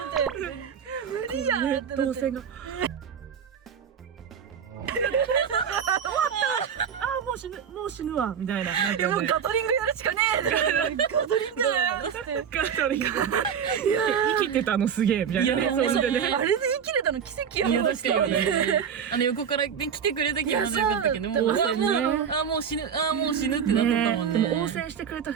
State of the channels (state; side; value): quieter; left; 7.6 dB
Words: 無理やんってなって。動線が。もう死ぬわみたいな。でもガトリングやるしかねえ。ガトリングやって。ガトリング。生きてたのすげえみたいな。いやあれで生きれたの奇跡やいやもん。確かにね。横から来てくれたけどまだよかったけど、もうもう死ぬってなっとったもんね。でも応戦してくれた